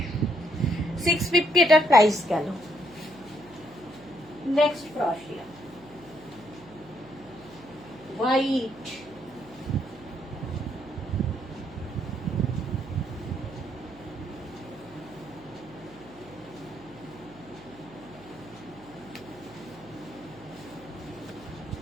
650 এটার প্রাইস গেল। নেক্সট ক্রশিয়া, হোয়াইট,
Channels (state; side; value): noise; right; hum, 22 dB below the sound